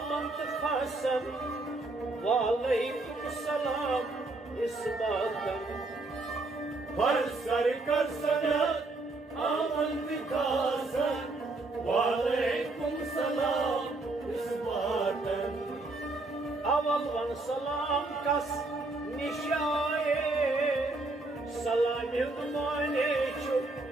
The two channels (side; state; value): left; quieter; 3.2 dB